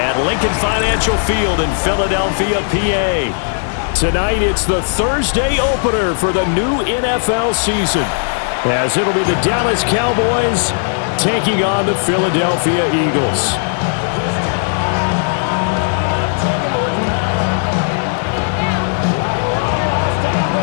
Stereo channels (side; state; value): right; silent; digital silence